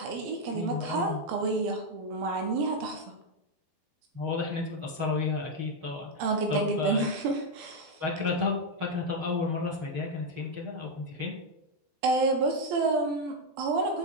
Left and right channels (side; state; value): left; late; 12 ms